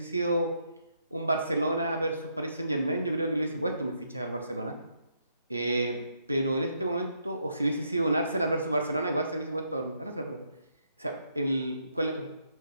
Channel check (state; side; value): inverted; both; correlation -0.76